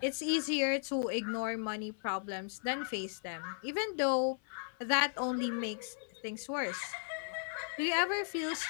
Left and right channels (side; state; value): right; silent; 54 dB below the other